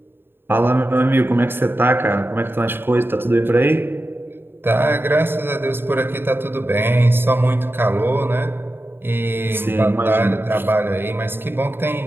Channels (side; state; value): left; late; 0.10 ms